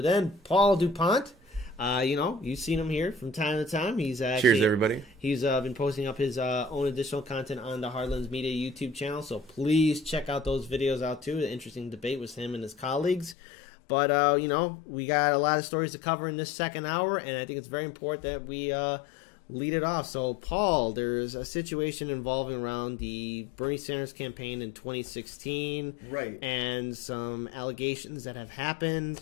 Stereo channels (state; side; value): drops out; right; at 13.4 s